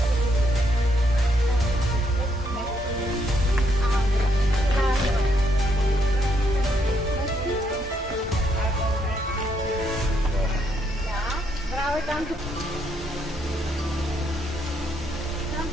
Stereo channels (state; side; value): normal; both; correlation 0.74